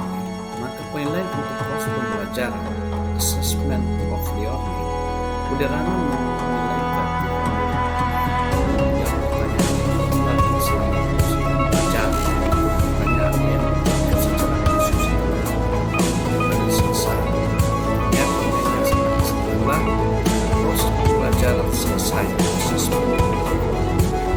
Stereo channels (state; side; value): identical; both; correlation 1.00